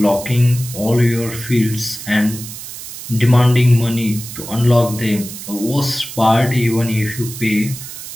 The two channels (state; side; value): noise; right; hiss, 11 dB below the sound